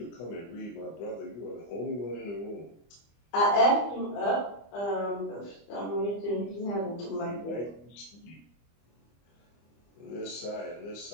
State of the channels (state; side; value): late; right; 25 ms